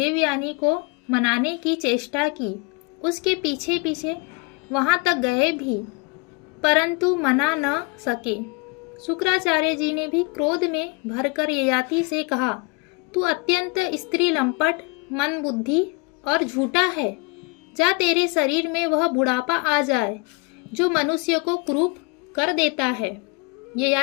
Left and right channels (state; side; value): quieter; right; 30.0 dB